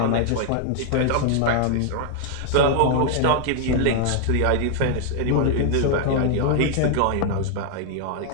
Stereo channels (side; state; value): both; different; correlation 0.00